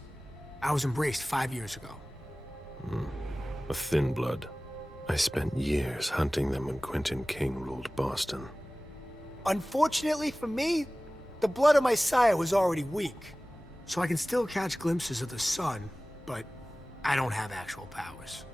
I was embraced 5 years ago. A thin blood. I spent years hunting them when Quentin King ruled Boston. Unfortunately for me, the blood of my sire was already weak. So I can still catch glimpses of the sun, but I don't have actual powers.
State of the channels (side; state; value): both; normal; correlation 0.98